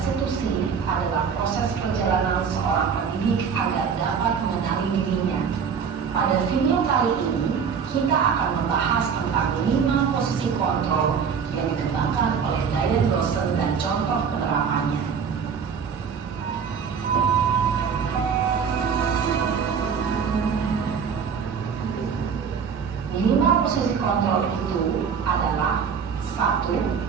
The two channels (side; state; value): left; quieter; 6.6 dB